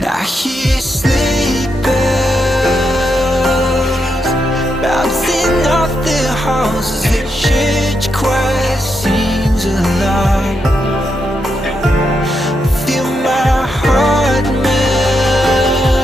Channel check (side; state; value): both; normal; correlation 0.83